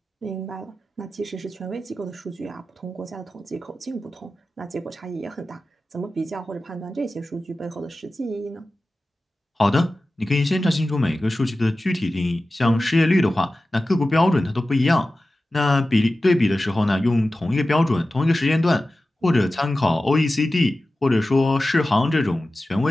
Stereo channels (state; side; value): normal; both; correlation 0.95